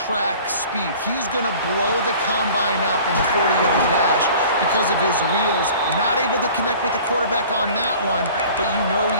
speed. He's going to blow the combine up in the 40-yard dash because of his wheels. Not able to connect with the quarterback on that one, but you know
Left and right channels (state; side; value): inverted; both; correlation -0.46